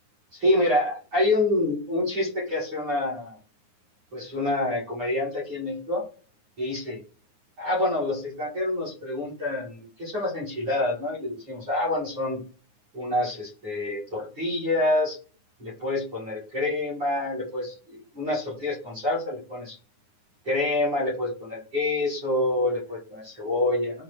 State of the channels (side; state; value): left; late; 9.6 ms